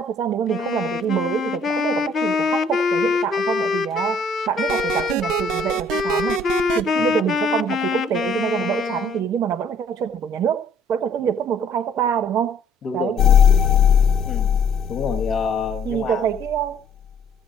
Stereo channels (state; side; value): normal; both; correlation 0.59